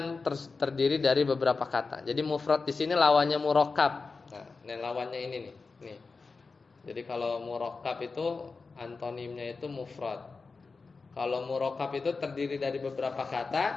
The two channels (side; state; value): right; quieter; 4.3 dB